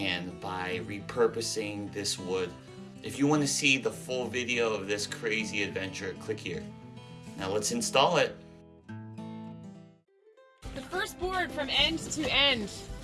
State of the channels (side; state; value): both; identical; correlation 1.00